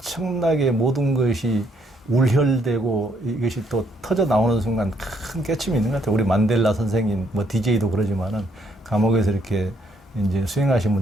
모든 것이 울혈되고 이것이 또 터져 나오는 순간 큰 깨침이 있는 것 같아요. 우리 만델라 선생님, 뭐 DJ도 그러지만은 감옥에서 이렇게 이제 수행하신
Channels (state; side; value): normal; both; correlation 0.70